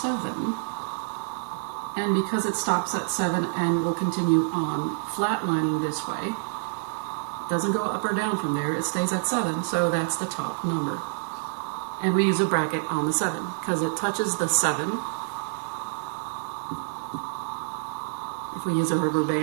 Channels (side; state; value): left; silent; digital silence